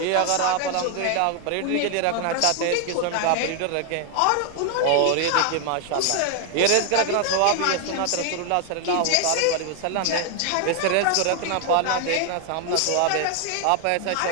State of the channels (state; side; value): different; both; correlation 0.00